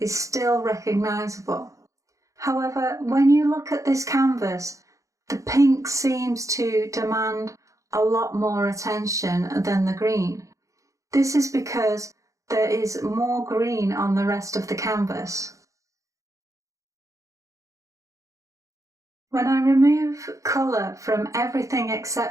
still recognisable. However, when you look at this canvas, the pink seems to demand a lot more attention than the green. This is because there is more green on the rest of the canvas. When I remove colour from everything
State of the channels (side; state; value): left; late; 0.15 ms